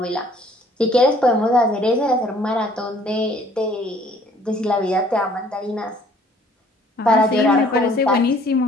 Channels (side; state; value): both; normal; correlation 0.58